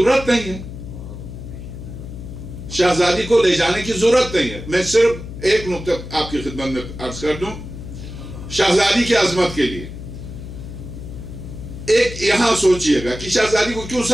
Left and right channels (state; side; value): noise; left; hum, 11 dB below the sound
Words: نہیں ہے. شہزادی کو لے جانے کی ضرورت نہیں ہے. میں صرف ایک نقطہ آپ کی خدمت میں عرض کر دوں شہزادی کی عظمت کے لیے. ایک یہاں سوچئے گا کہ شہزادی کو کیوں